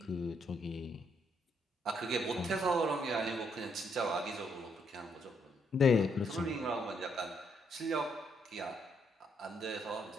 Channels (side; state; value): both; normal; correlation 0.74